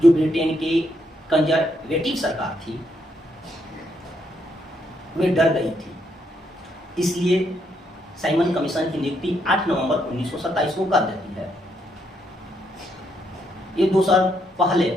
जो ब्रिटेन की कंजर्वेटिव सरकार थी वे डर गई थी, इसलिए साइमन कमीशन की नियुक्ति 8 नवंबर 1927 को कर देती है। ये 2 साल पहले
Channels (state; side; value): normal; both; correlation 0.76